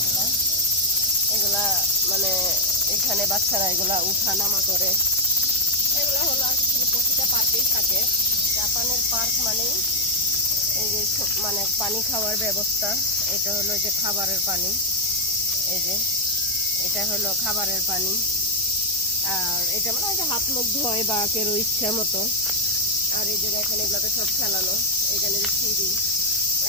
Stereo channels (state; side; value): normal; both; correlation 0.02